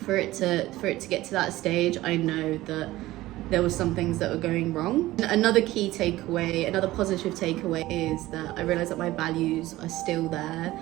for it to get to that stage, I know that there were some things that were going wrong. Another key takeaway, another positive takeaway is that I realized that my values are still there.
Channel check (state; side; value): quieter; left; 17.0 dB